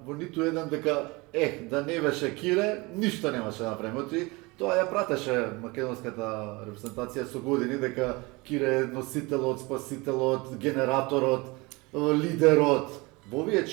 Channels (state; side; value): quieter; left; 24.9 dB